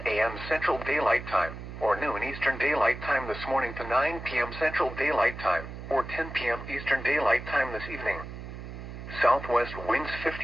a.m. Central Daylight Time, or noon Eastern Daylight Time this morning to 9 p.m. Central Daylight Time, or 10 p.m. Eastern Daylight Time this evening. Southwest winds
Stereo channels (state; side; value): noise; right; hum, 10 dB below the sound